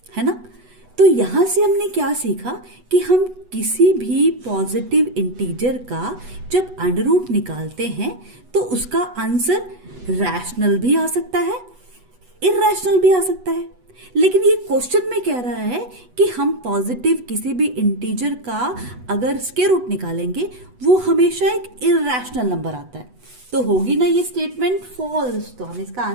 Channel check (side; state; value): left; late; 8.1 ms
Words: है ना। तो यहां से हमने क्या सीखा कि हम किसी भी पॉजिटिव इंटीजर का जब अंडर रूट निकालते हैं तो उसका आंसर रैशनल भी आ सकता है, इर्रेशनल भी आ सकता है। लेकिन ये क्वेश्चन में कह रहा है कि हम पॉजिटिव किसी भी इंटीजर का अगर स्क्वायर रूट निकालेंगे वो हमेशा एक इर्रेशनल नंबर आता है। तो होगी ना ये स्टेटमेंट फॉल्स। तो हम इसका